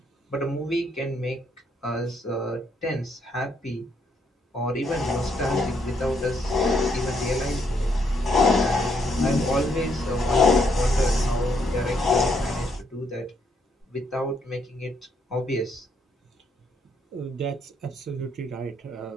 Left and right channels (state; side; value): normal; both; correlation 0.73